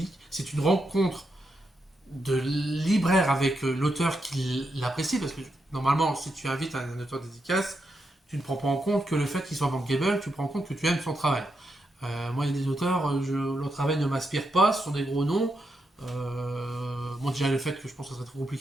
c'est une rencontre de libraire avec l'auteur qui l'apprécie, parce que normalement, si tu invites un auteur de dédicace, tu ne prends pas en compte que le fait qu'il soit bankable, tu prends en compte que tu aimes son travail. Moi, il y a des auteurs, leur travail ne m'inspire pas, ce sont des gros noms. Bon, déjà le fait que je pense que ça serait trop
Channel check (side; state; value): both; normal; correlation 0.84